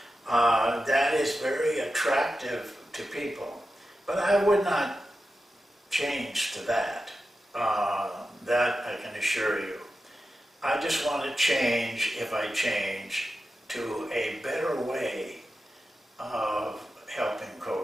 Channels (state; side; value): normal; both; correlation 0.91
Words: that is very attractive to people. But I would not change to that. That I can assure you. I just want to change, if I change, to a better way of helping